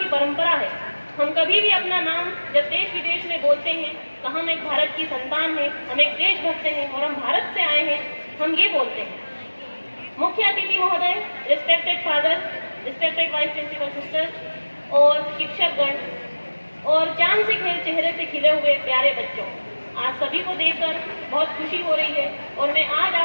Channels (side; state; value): both; inverted; correlation -1.00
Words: परंपरा है। हम कभी भी अपना नाम जब देश विदेश में बोलते हैं तो हम एक भारत की संतान हैं, हम एक देशभक्त हैं और हम भारत से आए हैं, हम ये बोलते हैं। मुख्य अतिथि महोदय, respected father, respected vice principal sisters और शिक्षकगण और चांद से चेहरे से खिले हुए प्यारे बच्चों, आज सभी को देखकर बहुत खुशी हो रही है और मैं आज